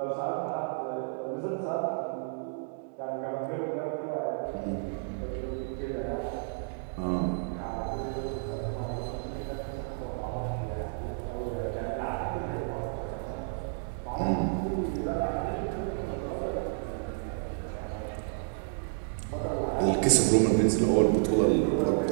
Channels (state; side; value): silent; left; digital silence